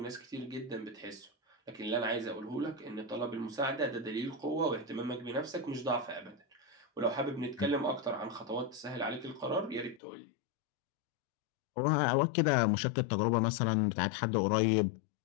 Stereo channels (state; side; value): drops out; right; at 10.0 s